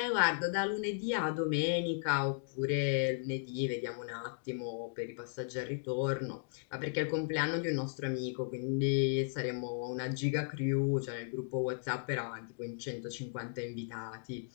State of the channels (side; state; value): right; silent; digital silence